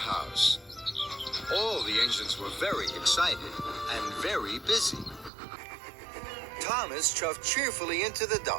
All the engines were very excited and very busy. Thomas chuffed cheerfully into the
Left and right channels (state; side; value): drops out; left; at 5.3 s